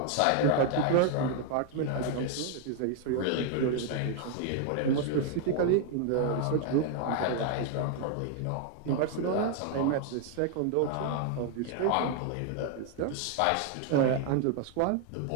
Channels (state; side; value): different; both; correlation 0.00